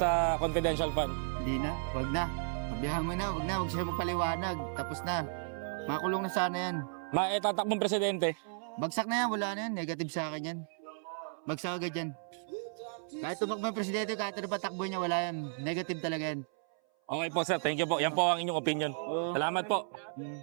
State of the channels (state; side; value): silent; left; 55 dB below the other